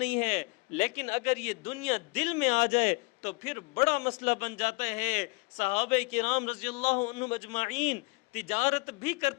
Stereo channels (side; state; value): right; quieter; 28.0 dB